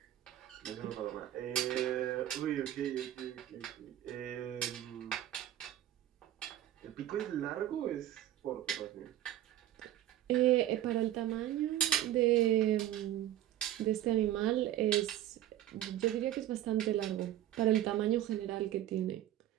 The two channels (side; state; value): left; quieter; 12.8 dB